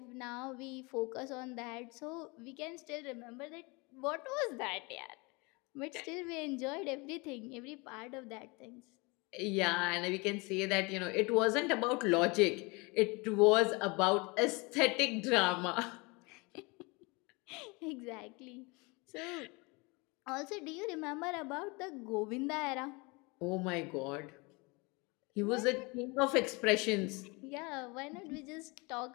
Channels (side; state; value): right; quieter; 27.5 dB